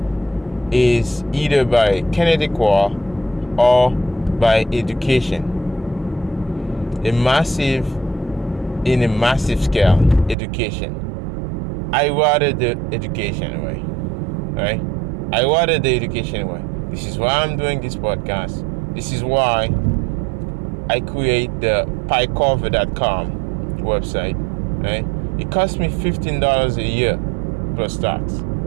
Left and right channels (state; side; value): drops out; left; at 10.4 s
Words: is either by kinetic war or by education. In a massive scale, education. I rather the education way, right? I rather the education way. This is why I'm doing this podcast. This is why I create the piecover.com website, right? It costs me $15 a year plus tax